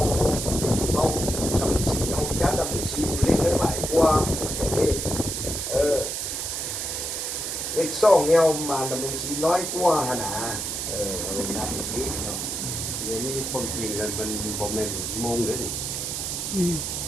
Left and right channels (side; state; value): right; noise; hiss, 3 dB below the sound